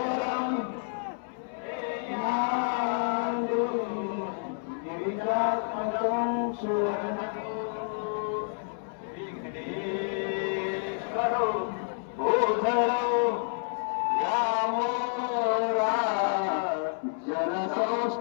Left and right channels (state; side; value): silent; right; 58 dB below the other